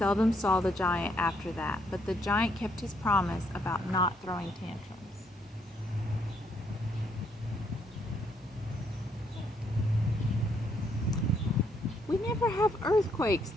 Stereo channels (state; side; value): normal; both; correlation 0.71